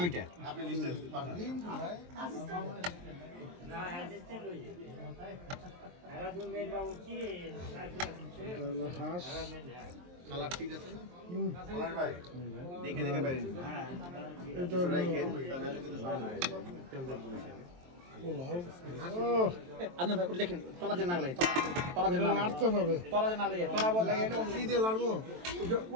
এটা হলো হাঁস। কালার ঠিক আছে না? ভাই দেখে দেখে বাইরে এটা হলো পোলাও। ও, আপনার ভাই ওটা দেখেন, তলা যে না লাগে, তলা যে এটা না লাগে, নাড়তে হবে। তলা যে না লাগে, তলা বল লাগে এটা কি দিয়ে লাড়বো?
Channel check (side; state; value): left; late; 23 ms